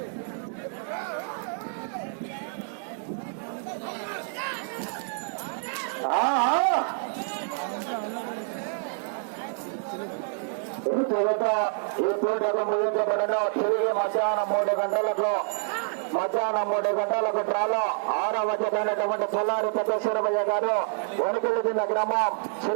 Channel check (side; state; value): left; silent; digital silence